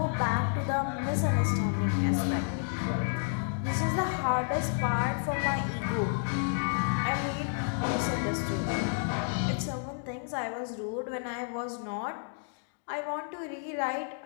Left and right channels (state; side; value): silent; right; digital silence